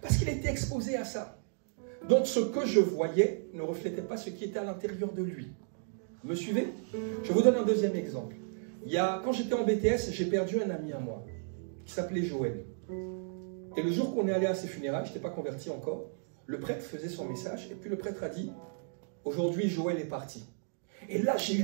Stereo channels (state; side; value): silent; left; digital silence